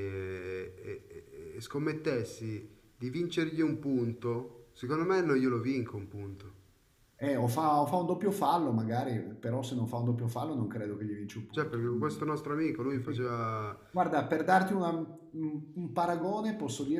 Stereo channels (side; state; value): both; identical; correlation 1.00